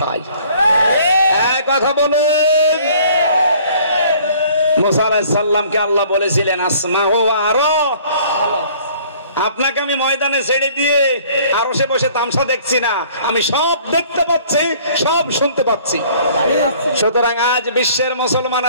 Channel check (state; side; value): inverted; both; correlation -0.55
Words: এক কথা বলেন, মুসা আলাইহিস সালামকে আল্লাহ বলেছিলেন আসমাউ ওয়া আরা, আপনাকে আমি ময়দানে ছেড়ে দিয়ে আরশে বসে তামসা দেখছি না, আমি সব দেখতে পাচ্ছি, সব শুনতে পাচ্ছি। সুতরাং আজ বিশ্বের